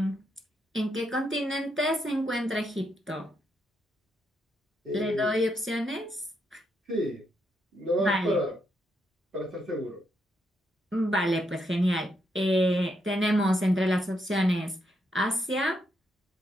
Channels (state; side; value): normal; both; correlation 0.78